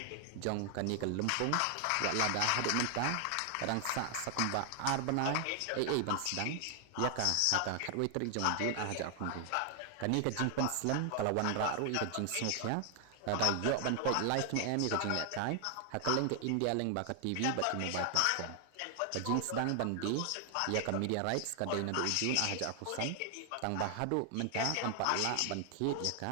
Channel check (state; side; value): different; both; correlation 0.00